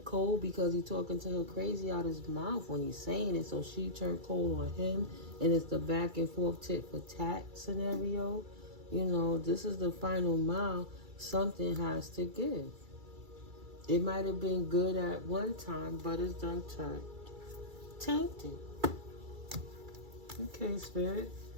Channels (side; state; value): left; late; 2.3 ms